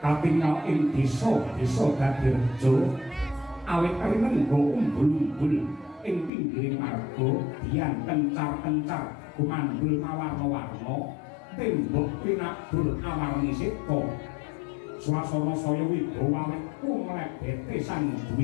katingal ing desa dadi reja awit rinengga umbul-umbul ing pinggiring marga dian kencar-kencar gumandul mawarna-warna tembok pinabur awarni seta swasana saya wibawa awit kumlebete sang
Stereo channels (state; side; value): drops out; right; at 6.3 s